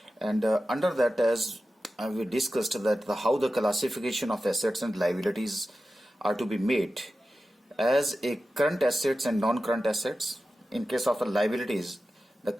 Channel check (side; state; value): both; normal; correlation 0.93